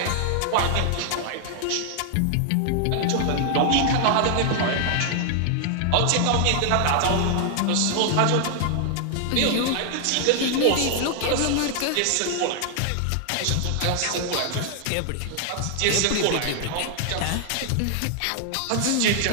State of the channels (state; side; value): different; both; correlation 0.00